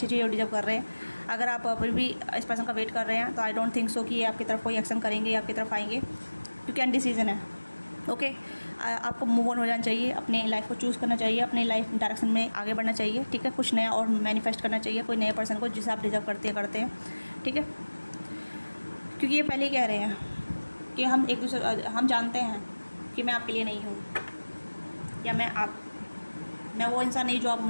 चीज़ें डिजर्व कर रहे हैं। अगर आप अभी भी इस पर्सन का वेट कर रहे हैं तो आई डोंट थिंक सो कि ये आपकी तरफ कोई एक्शन करेंगे या आपकी तरफ आएंगे, क्योंकि अनडिसीजन है, ओके। आपको मूव ऑन हो जाना चाहिए, अपने लाइफ को चूज़ करना चाहिए, अपने लाइफ डायरेक्शन में आगे बढ़ना चाहिए, ठीक है। कुछ नया और मैनिफेस्ट करना चाहिए, कोई नए पर्सन को जिसे आप डिजर्व करते हैं, ठीक है। क्योंकि ये पहले ही कह रहे हैं कि हम जानते हैं कि मैं आपके लिए नहीं हूँ, या मैं वो इंसान नहीं जो आप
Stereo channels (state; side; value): inverted; both; correlation -1.00